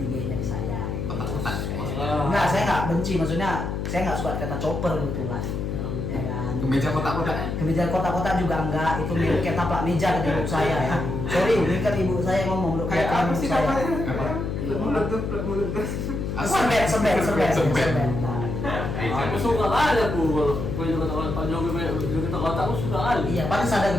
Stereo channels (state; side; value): noise; left; hum, 3 dB below the sound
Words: di saya. Gitu. Enggak, saya nggak benci, maksudnya saya nggak suka kata chopper kebetulan. Ya kan. Kemeja kotak-kotaknya? Kemeja kotak-kotak juga enggak, itu milik kayak taplak meja kata ibu saya ya. Sorry, ini kan ibu saya ngomong untuk Kayak apa sih saya. namanya? Apa? Mulut tuh. Sebet. Nah, Aku suka kali aku kalau kata Pak Jokowi kita kata aku suka kali. iya, paling ada